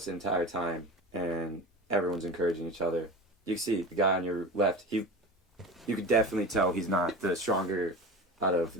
the entire time, and everyone's encouraging each other. You can see the guy on your left, you could definitely tell he's not the stronger out of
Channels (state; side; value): normal; both; correlation 0.30